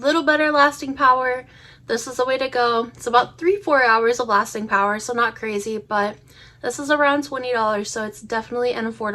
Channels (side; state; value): both; identical; correlation 1.00